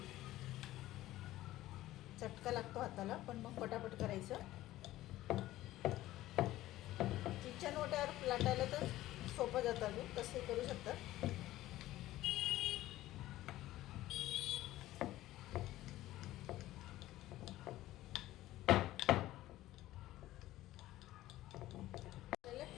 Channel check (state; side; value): quieter; right; 15.6 dB